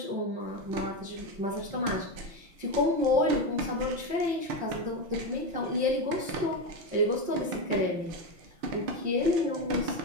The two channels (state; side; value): late; left; 6.0 ms